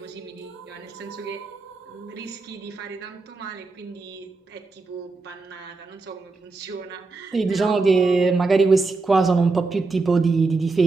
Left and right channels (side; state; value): left; quieter; 3.8 dB